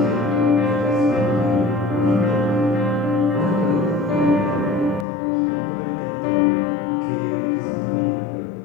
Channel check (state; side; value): drops out; right; at 5.1 s